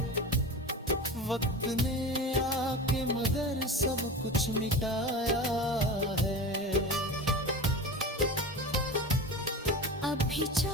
वक्त ने आके मगर सब कुछ मिटाया है। अभी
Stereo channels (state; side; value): normal; both; correlation 0.31